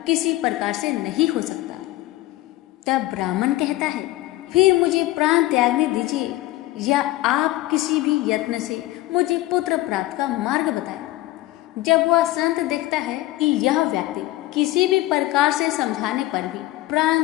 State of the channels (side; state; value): right; quieter; 17.3 dB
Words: किसी प्रकार से नहीं हो सकता। तब ब्राह्मण कहता है, फिर मुझे प्राण त्यागने दीजिए या आप किसी भी यत्न से मुझे पुत्र प्राप्त का मार्ग बताएं। जब वह संत देखता है कि यह व्यक्ति किसी भी प्रकार से समझाने पर भी